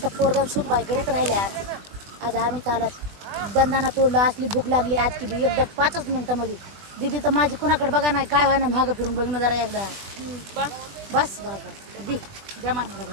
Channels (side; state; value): left; late; 20 ms